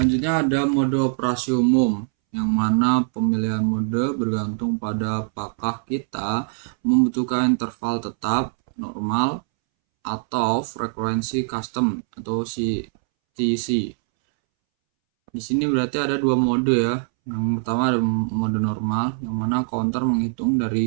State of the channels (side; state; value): left; silent; 64 dB below the other